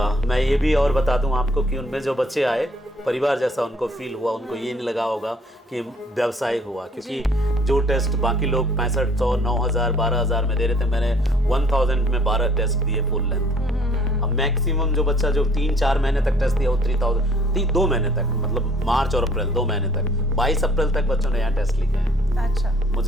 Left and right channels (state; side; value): normal; both; correlation 0.58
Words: मैं ये भी और बता दूं आपको कि उनमें जो बच्चे आए परिवार जैसा उनको फील हुआ, उनको ये नहीं लगा होगा कि व्यवसाय हुआ, क्योंकि जो टेस्ट बाकी लोग 6500, 9000, 12000 में दे रहे थे, मैंने 1000 में 12 टेस्ट दिए फुल लेंथ। अब मैक्सिमम जो बच्चा जो 3-4 महीने तक टेस्ट दिया वो 3000, 2 महीने तक, मतलब मार्च और अप्रैल 2 महीने तक, 22 अप्रैल तक बच्चों ने यहाँ टेस्ट लिखे हैं। अच्छा।